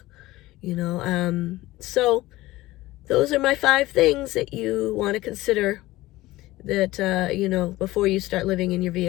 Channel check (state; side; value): quieter; right; 17.9 dB